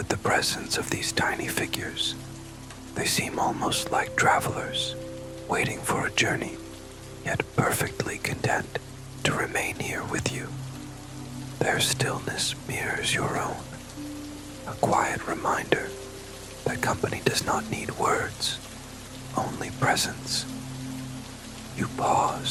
the presence of these tiny figures. They seem almost like travelers, waiting for a journey, yet perfectly content to remain here with you. Their stillness mirrors your own, a quiet reminder that company does not need words, only presence. You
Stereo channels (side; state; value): both; identical; correlation 1.00